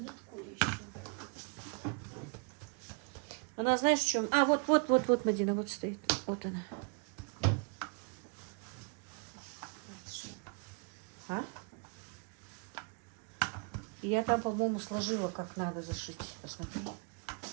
еще. Она, знаешь, в чем? А, вот, Мадина, вот стоит. Вот она. А? И я там, по-моему, сложила, как надо зашить. Посмотри.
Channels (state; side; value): quieter; left; 36.7 dB